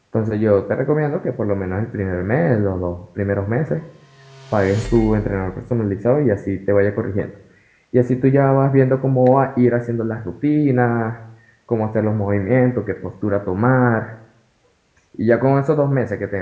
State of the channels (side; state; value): both; identical; correlation 1.00